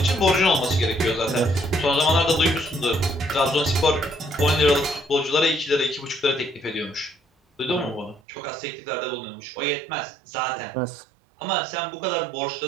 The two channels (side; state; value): left; drops out; at 8.2 s